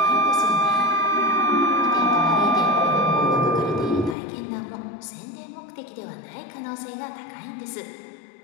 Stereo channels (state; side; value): drops out; right; at 4.2 s